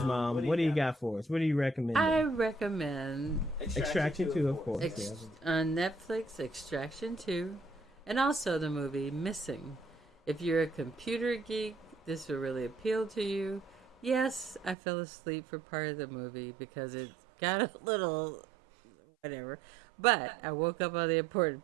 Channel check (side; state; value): left; drops out; at 14.8 s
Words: Mom. What do you got for us? What do you recommend? I recommend Extraction 2, of course. On Netflix, Extraction 2, and also the movie Missing. If you're a computer geek, this will really appeal to you. Yes, I fell asleep for part of the movie because it got a little whatever. But I woke up on the